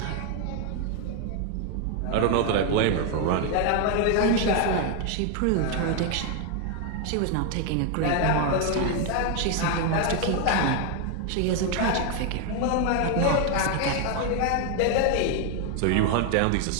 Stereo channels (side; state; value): both; different; correlation 0.01